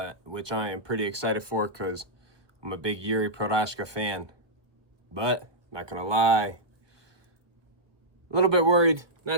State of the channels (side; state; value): left; late; 1.0 ms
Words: which I am pretty excited for because I'm a big Jiri Procházka fan. But not gonna lie, a little bit worried,